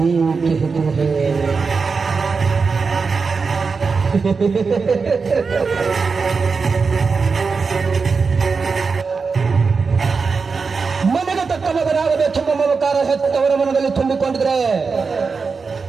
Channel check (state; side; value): quieter; left; 4.9 dB